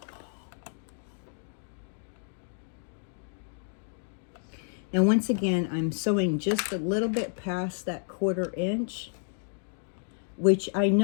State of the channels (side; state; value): right; silent; digital silence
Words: Now, once again, I'm sewing just a little bit past that 1/4 inch, which I